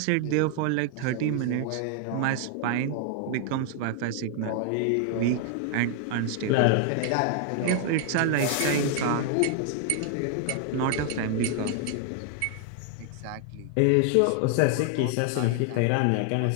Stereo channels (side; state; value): both; different; correlation 0.00